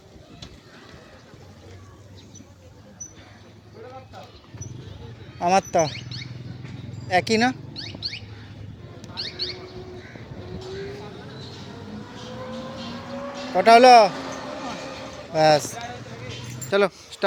আমার তা একই না কটা হলো ব্যাস চলো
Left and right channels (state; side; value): identical; both; correlation 1.00